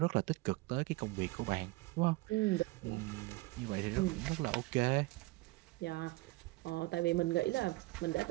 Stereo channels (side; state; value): left; quieter; 21.6 dB